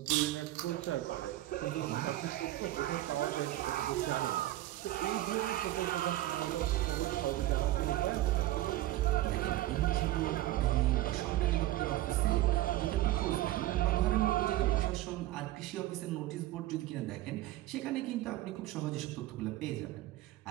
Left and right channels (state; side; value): quieter; left; 15.6 dB